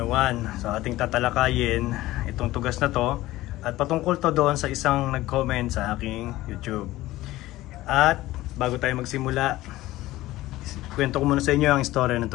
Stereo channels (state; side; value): quieter; right; 16.8 dB